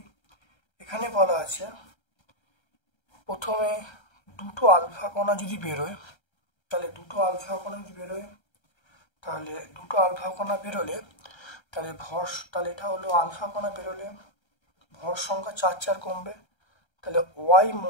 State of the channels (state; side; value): late; right; 1.3 ms